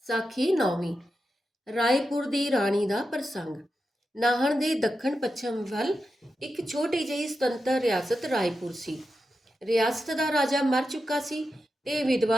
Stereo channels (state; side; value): normal; both; correlation 0.89